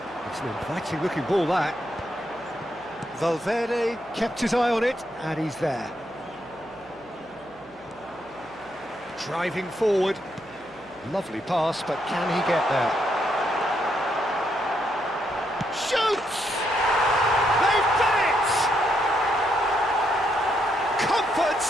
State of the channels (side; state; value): right; noise; hum, 27 dB below the sound